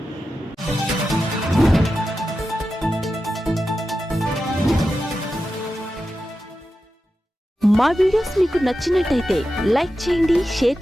మా వీడియోస్ మీకు నచ్చినట్టయితే లైక్ చేయండి, షేర్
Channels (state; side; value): normal; both; correlation 0.91